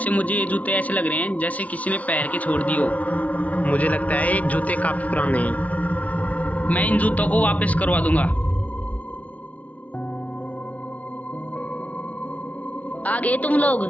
मुझे ये जूते ऐसे लग रहे हैं जैसे किसी ने पहन के छोड़ दिए हो। मुझे लगता है ये जूते काफी पुराने हैं। मैं इन जूतों को वापस करवा दूंगा। आ गए तुम लोग?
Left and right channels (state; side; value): late; right; 0.069 ms